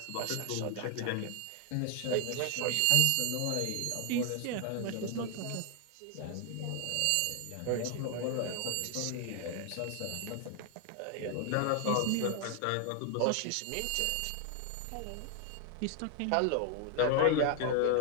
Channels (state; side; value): different; both; correlation 0.00